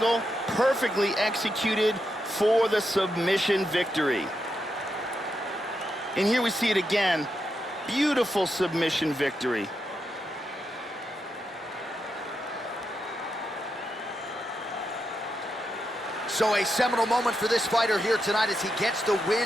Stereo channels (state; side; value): normal; both; correlation 0.84